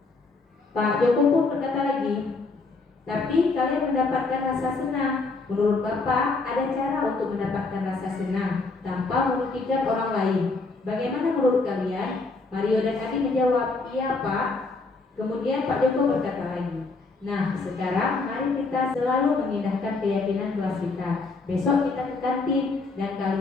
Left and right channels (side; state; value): right; quieter; 3.8 dB